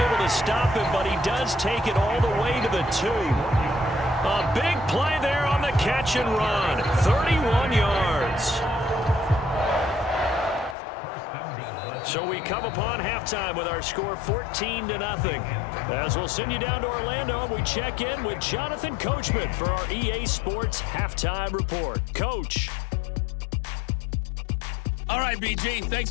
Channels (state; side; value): drops out; right; at 10.8 s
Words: able to stop him, but he does take it all the way to the 2. A big play there on the catch and run. 31 yards. So we come upon halftime with our score 14-0. As we'll send you down to Orlando, we check in with Jonathan Coachman for our EA Sports Halftime Report. Coach. All right, BG, thanks